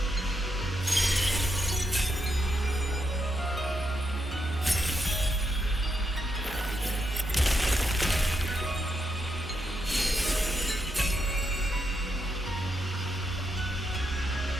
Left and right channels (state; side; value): normal; both; correlation 0.82